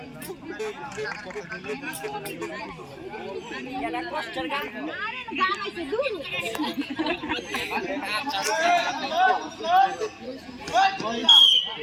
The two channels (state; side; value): identical; both; correlation 1.00